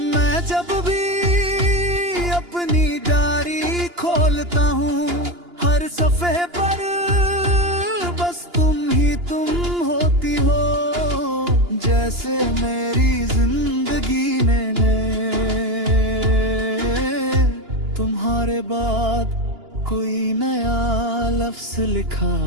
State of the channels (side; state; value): left; late; 2.9 ms